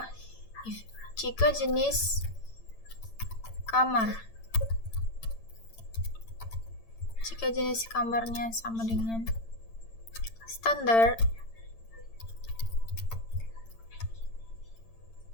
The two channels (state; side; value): late; right; 8.9 ms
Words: jenis kamarnya sama dengan standar,